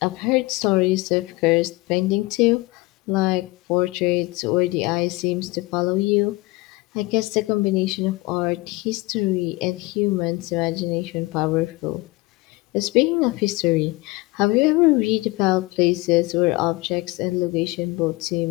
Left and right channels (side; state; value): right; quieter; 22.5 dB